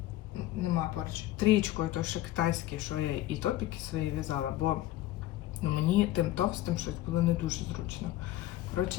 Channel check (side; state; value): right; quieter; 14.9 dB